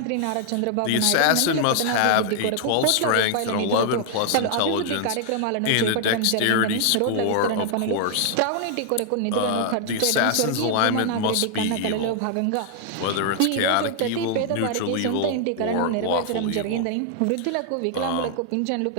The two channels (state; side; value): different; both; correlation 0.00